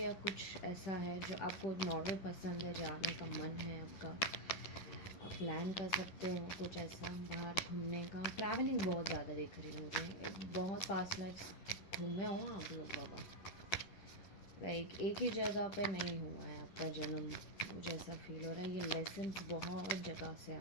कुछ ऐसा है जो आपको नॉर्वे पसंद है, जाने का मन है आपका, आप प्लान कर सकते हो कुछ ऐसा बाहर घूमने का. ट्रैवलिंग बहुत ज़्यादा दिख रही है मुझे, बहुत पास्ट लाइफ घूमे हो आप लोग बाबा. लाइक एक ही जगह पे नहीं हुआ है आपका जन्म, मुझे ऐसा फील हो रहा है. ये लेसन्स बहुत जगह से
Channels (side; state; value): right; late; 10 ms